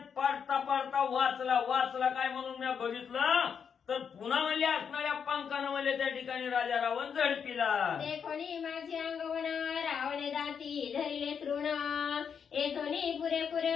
पाडता वाचला काय म्हणून मी बघितलं तर पुन्हा म्हणजे असणाऱ्या पंखानं म्हणजे त्या ठिकाणी राजा रावण झडपिला. देखोनी माझी अंगवण रावणे दाती धरिले तृण. येथोनी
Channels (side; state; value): right; quieter; 7.0 dB